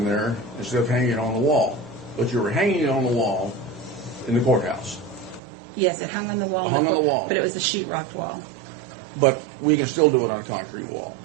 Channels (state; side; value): drops out; left; at 5.4 s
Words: there instead of hanging it on the wall. But you were hanging it on the wall in the courthouse. Yes, it hung on the wall. Hung on the wall. But it was a sheetrock wall. But we can still do it on a concrete wall.